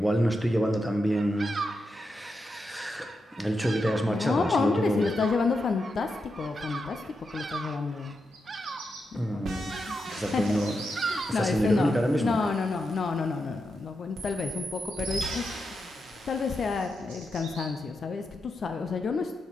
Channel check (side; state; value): both; normal; correlation 0.86